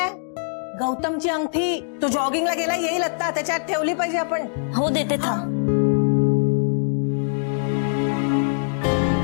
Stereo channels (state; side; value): silent; right; digital silence